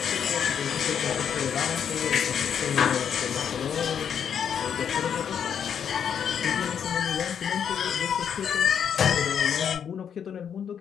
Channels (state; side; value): quieter; right; 8.0 dB